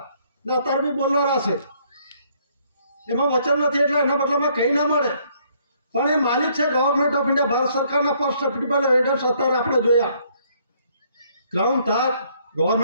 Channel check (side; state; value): both; inverted; correlation -0.66